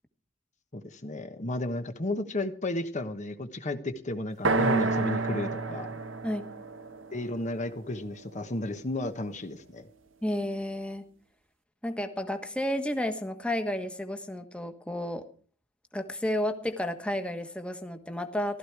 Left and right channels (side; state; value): both; normal; correlation 0.52